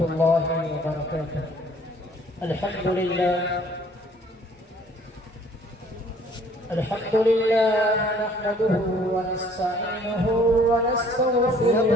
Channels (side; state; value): both; normal; correlation 0.57